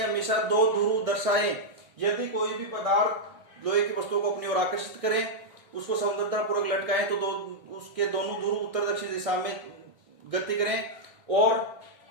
हमेशा दो ध्रुव दर्शाएं। यदि कोई भी पदार्थ लोहे की वस्तुओं को अपनी ओर आकर्षित करें, उसको समतलतापूर्वक लटकाएं, तो उसके दोनों ध्रुव उत्तर दक्षिण दिशा में गति करें। और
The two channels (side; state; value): left; late; 1.6 ms